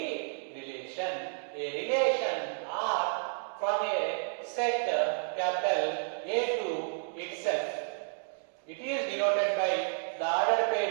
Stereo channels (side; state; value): left; silent; digital silence